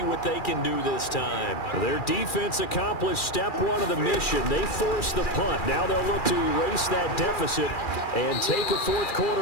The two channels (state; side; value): late; right; 2.4 ms